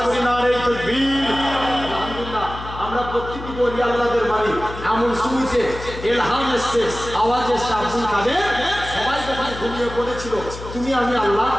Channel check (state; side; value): noise; left; hum, 11 dB below the sound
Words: করি নারে তাকবীর? আলহামদুলিল্লাহ, আমরা প্রত্যেকটি ওলি আল্লাহদের মানি। এমন শুনছে এলহাম এসছে, আওয়াজ এসছে, আব্দুল কাদের সবাই যখন ঘুমিয়ে পড়েছিল, তুমি আমি আল্লাহ